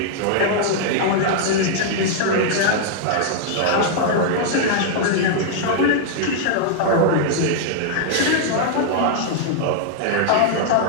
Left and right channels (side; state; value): both; different; correlation -0.01